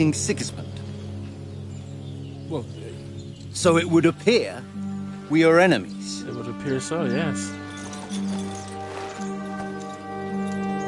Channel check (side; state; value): both; identical; correlation 1.00